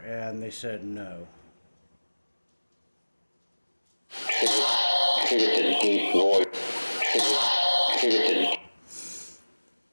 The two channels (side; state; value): both; inverted; correlation -1.00